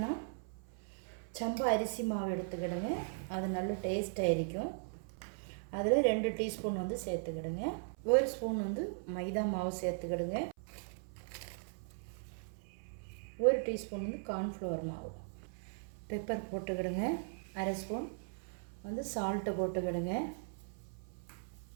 சம்பா அரிசி மாவு எடுத்துக்கிடுங்க, அது நல்ல டேஸ்ட்டாக இருக்கும். அதில் 2 டீஸ்பூன் வந்து சேர்த்துக்கிடுங்க. 1 ஸ்பூன் வந்து மைதா மாவு சேர்த்துக்கிடுங்க. 1 டீஸ்பூன் வந்து கார்ன்ஃப்ளவர் மாவு. பெப்பர் போட்டுக்கிடுங்க. 1/2 ஸ்பூன் வந்து சால்ட்டு போட்டுக்கிடுங்க.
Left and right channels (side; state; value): left; silent; 52 dB below the other